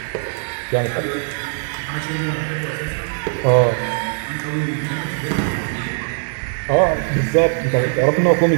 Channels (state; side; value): silent; left; digital silence